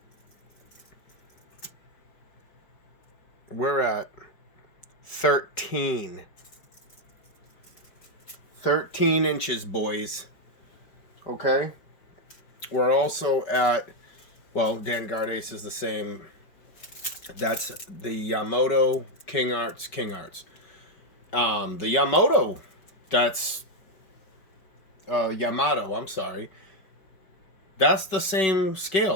we're at 13 inches, boys. Okay, we're also at, well, Danguard Ace is the same. That's the Yamato King Arts. The Yamato, that's Yamato, I'm sorry. That's the same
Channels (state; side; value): late; right; 5.3 ms